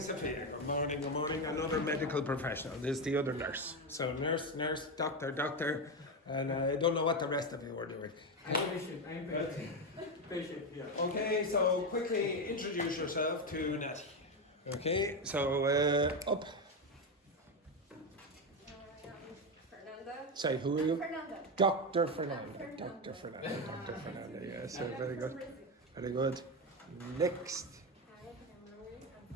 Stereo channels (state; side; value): normal; both; correlation 0.12